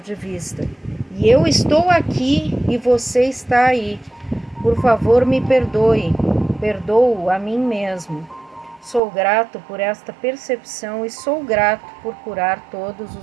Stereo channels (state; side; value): drops out; left; at 9.0 s